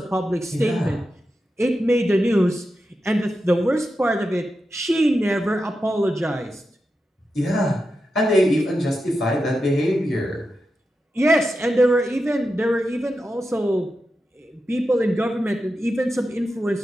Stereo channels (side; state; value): both; normal; correlation 0.89